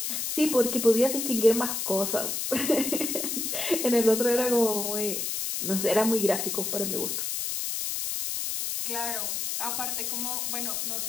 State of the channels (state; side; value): noise; left; hiss, 2 dB below the sound